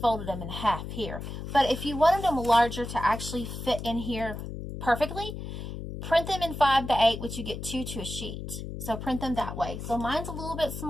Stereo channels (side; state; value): left; noise; hum, 8 dB below the sound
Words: folded them in half here. But if you wanted them larger to actually fit in here perfectly, print them in 5x8, which you get 2 to a sheet. So print them that way. So mine's a little bit